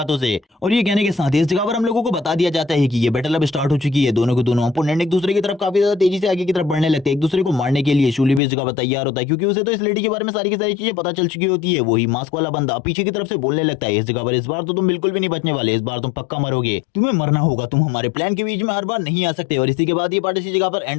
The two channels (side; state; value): right; drops out; at 8.4 s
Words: से। और ये कहने के साथ ही इस जगह पर हम लोगों को बता दिया जाता है कि ये बैटल अब स्टार्ट हो चुकी है। दोनों के दोनों अपोनेंट एक दूसरे की तरफ काफी ज्यादा तेजी से आगे की तरफ बढ़ने लगते हैं एक दूसरे को मारने के लिए। शूली भी इस जगह पर तैयार होता है क्योंकि उसे तो इस लेडी के बारे में सारी की सारी चीजें पता चल चुकी होती है। वही मास्क वाला बंदा पीछे की तरफ से बोलने लगता है इस जगह पर इस बार तो तुम बिल्कुल भी नहीं बचने वाले, इस बार तुम पक्का मरोगे, तुम्हें मरना होगा, तुम हमारे प्लान के बीच में हर बार नहीं आ सकते। और इसी के बाद ये पार्ट इसी जगह पर